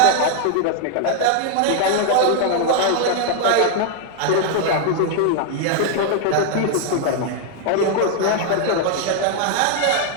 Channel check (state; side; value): different; both; correlation 0.00